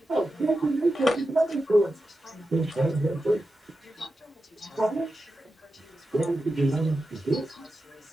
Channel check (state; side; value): normal; both; correlation 0.91